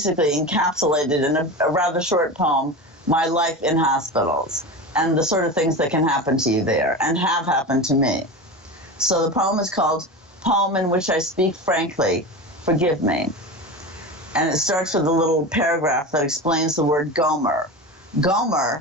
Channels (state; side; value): normal; both; correlation 0.26